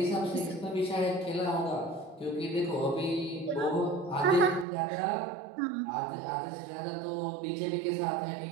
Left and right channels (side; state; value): left; drops out; at 4.7 s